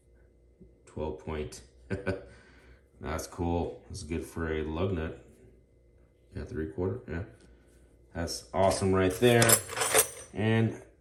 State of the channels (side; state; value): both; identical; correlation 1.00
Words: 12 point. That's cool. That's good for a lug nut. Yeah, 3/4. Yeah. That's awesome right there. And